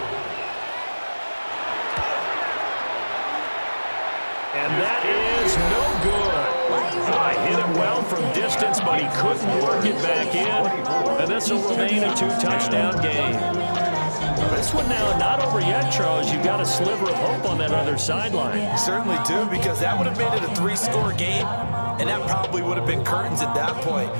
And that is no good. Hit him well from distance, but he couldn't work it back in. And this will remain a 2-touchdown game. This one now not over yet, Charles. You've got a sliver of hope on that other sideline. You certainly do, because that would have made it a 3-score game, and that probably would have been curtains at that point.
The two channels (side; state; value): both; inverted; correlation -1.00